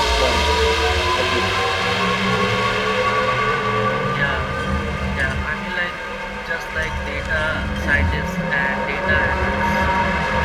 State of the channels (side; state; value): both; identical; correlation 1.00